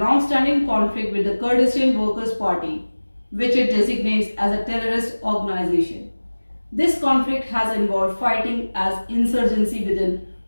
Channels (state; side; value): inverted; both; correlation -1.00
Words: conflict with the Kurdistan Workers' Party, which it designates as a terrorist organization. This conflict has involved fighting as insurgency within